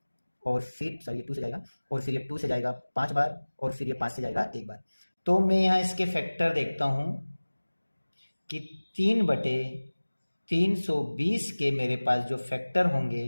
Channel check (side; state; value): both; inverted; correlation -1.00